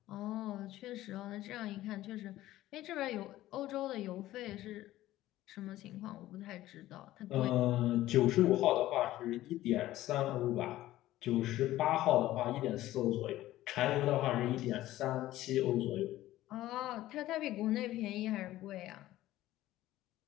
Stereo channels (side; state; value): right; quieter; 15.2 dB